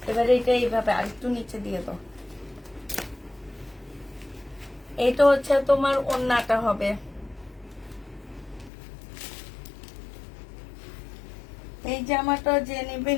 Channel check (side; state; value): right; drops out; at 8.7 s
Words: এবারে এটা এইভাবে আরেকটু নিচে দিয়ে দাও। এটা হচ্ছে তোমার ওড়নাটা হবে। এই জামাটা যে